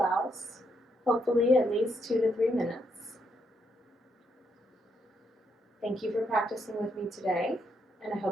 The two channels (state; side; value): normal; both; correlation 0.77